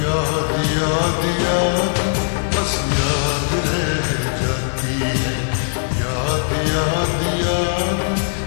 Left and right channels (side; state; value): right; silent; 66 dB below the other